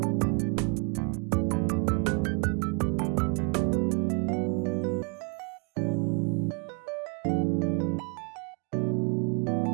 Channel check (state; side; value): quieter; left; 34.5 dB